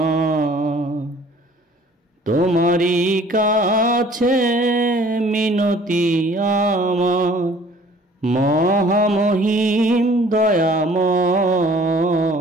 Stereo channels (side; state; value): both; normal; correlation 0.53